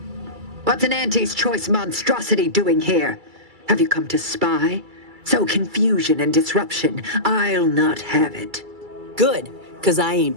What's an Auntie's choice monstrosity doing here? Have you come to spy? So confusion and disruption, I'll not have it. Good, because I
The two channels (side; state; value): left; late; 2.3 ms